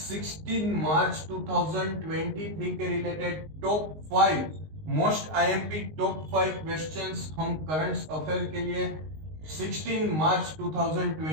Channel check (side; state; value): left; late; 19 ms